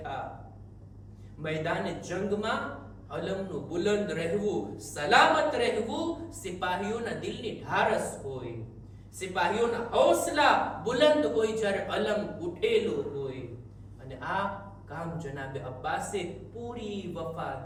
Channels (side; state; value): both; identical; correlation 1.00